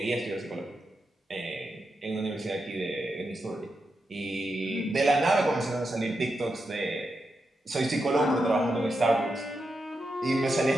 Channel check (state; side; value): normal; both; correlation 0.86